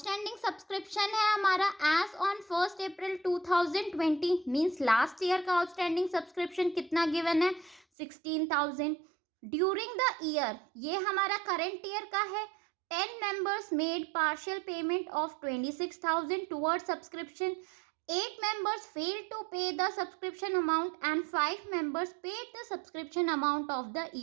subscription है हमारा as on 1 April 2020, means last year का आउटस्टैंडिंग सब्सक्रिप्शन कितना गिवन है, 16,000 ड्यूरिंग द ईयर, ये हमारा करेंट ईयर का है, 10 members made partial payment of 26,000 towards subscription, 8 members failed to pay the subscription amount and 5 members paid the subscription amount of the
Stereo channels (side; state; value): left; drops out; at 7.9 s